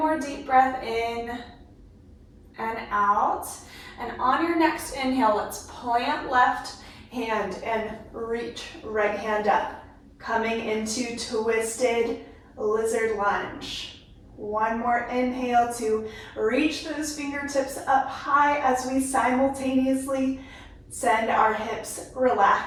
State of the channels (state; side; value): identical; both; correlation 1.00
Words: deep breath in and out. And on your next inhale, let's plant left hand and reach right hand up. Coming into twisted lizard lunge. One more inhale to reach those fingertips up high as we simultaneously send our hips